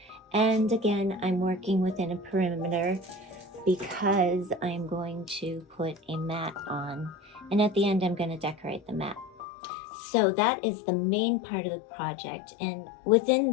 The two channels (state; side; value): drops out; right; at 9.5 s